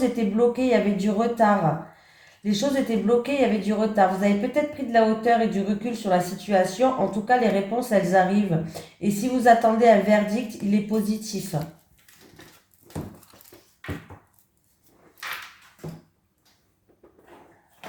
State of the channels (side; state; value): both; identical; correlation 1.00